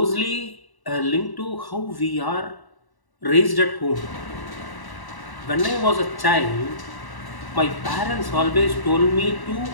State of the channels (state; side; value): late; right; 1.1 ms